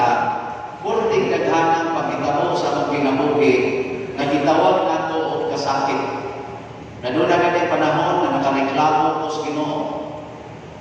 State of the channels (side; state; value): both; identical; correlation 1.00